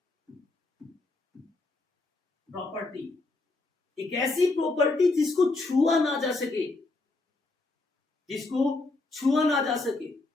एक ऐसी प्रॉपर्टी जिसको छुआ ना जा सके, जिसको छुआ ना जा सके।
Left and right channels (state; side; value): quieter; right; 3.3 dB